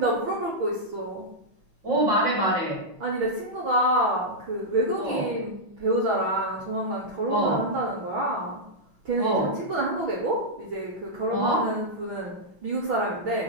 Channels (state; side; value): late; left; 6.1 ms